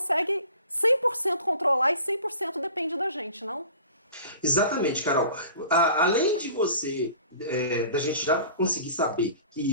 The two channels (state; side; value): inverted; both; correlation -0.44